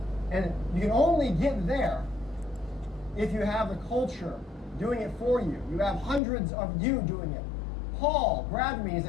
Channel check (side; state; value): right; drops out; at 6.2 s